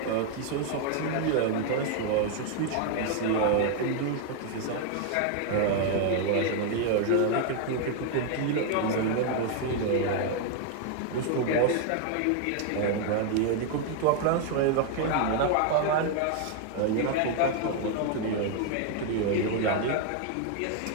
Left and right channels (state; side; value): different; both; correlation 0.00